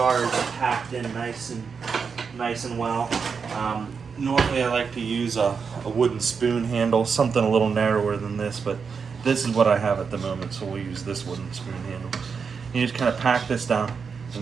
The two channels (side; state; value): left; quieter; 5.8 dB